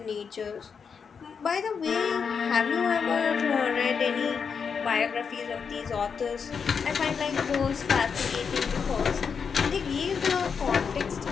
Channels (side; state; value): right; quieter; 6.2 dB